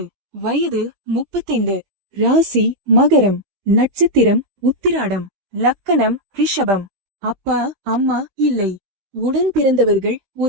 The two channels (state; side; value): late; left; 15 ms